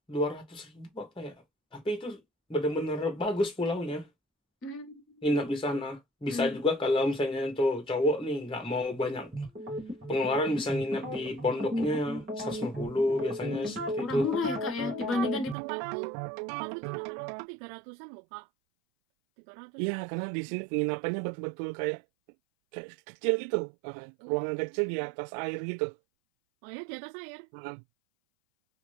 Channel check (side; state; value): left; drops out; at 15.6 s